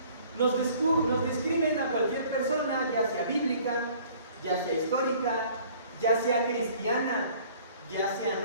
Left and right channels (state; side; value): inverted; both; correlation -0.53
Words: Nos describen a cualquier persona, ya sea bíblica, ya sea histórica, ya sea cristiana, ya sea